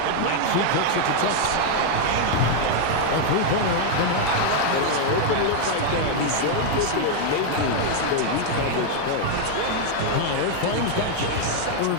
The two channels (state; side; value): different; both; correlation 0.00